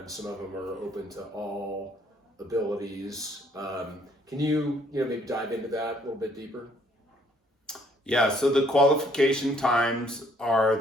Some of them are open to all abilities. Can you maybe dive into that a little bit deeper? Yeah, so the qualification times are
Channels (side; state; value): both; normal; correlation 0.64